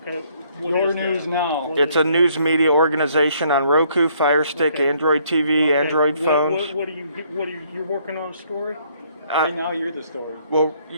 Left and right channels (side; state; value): both; inverted; correlation -0.66